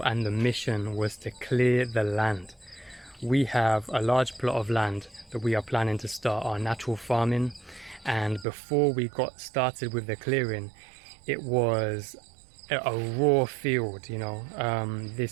and the mission was to clear the land. We have a large plot of land that we are planning to start our natural farming, and before we got started with the clearing, it was a raw field.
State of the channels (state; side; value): drops out; left; at 8.5 s